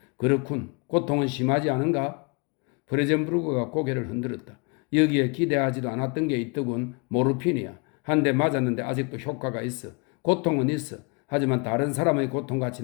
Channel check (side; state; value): right; quieter; 32.3 dB